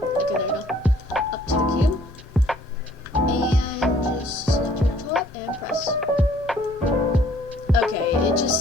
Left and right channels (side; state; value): both; normal; correlation 0.59